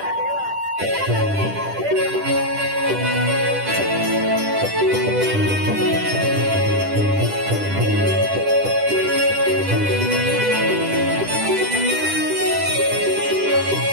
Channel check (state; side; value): late; left; 10 ms